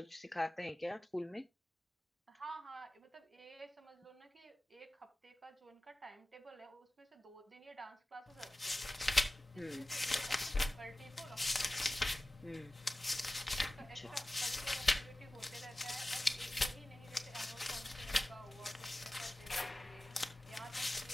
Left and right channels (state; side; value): normal; both; correlation 0.97